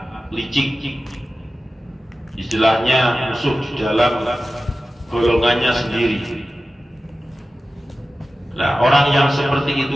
licik. Istilahnya musuh di dalam golongannya sendiri. Nah, orang yang seperti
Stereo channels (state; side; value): normal; both; correlation 0.95